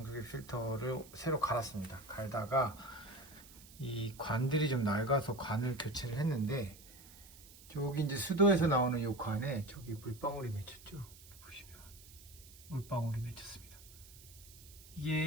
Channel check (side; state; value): right; noise; hiss, 20 dB below the sound